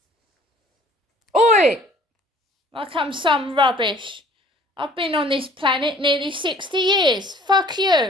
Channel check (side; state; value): both; normal; correlation 0.53